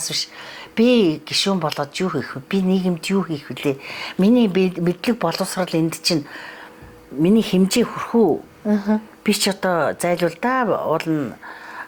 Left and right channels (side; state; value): both; identical; correlation 1.00